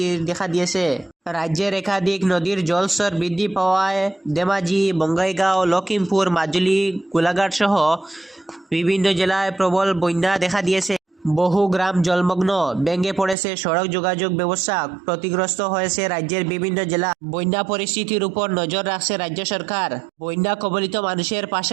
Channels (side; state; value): left; drops out; at 13.4 s